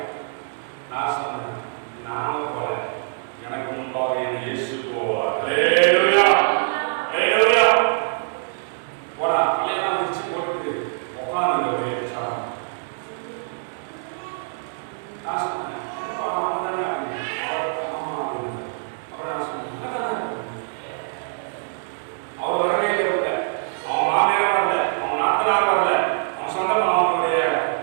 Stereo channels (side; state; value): left; silent; digital silence